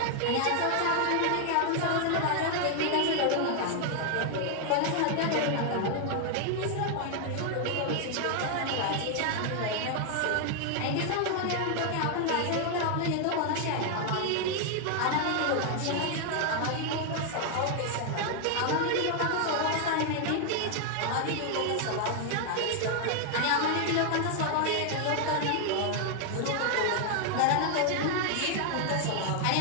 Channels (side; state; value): both; different; correlation 0.00